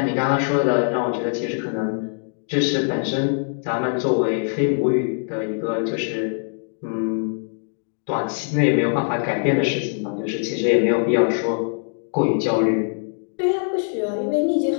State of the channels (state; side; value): silent; right; 64 dB below the other